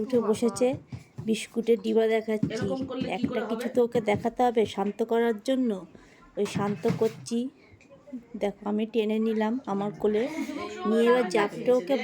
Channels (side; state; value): both; identical; correlation 1.00